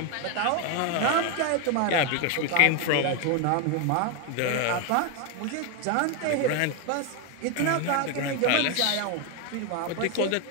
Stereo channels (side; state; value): both; different; correlation 0.01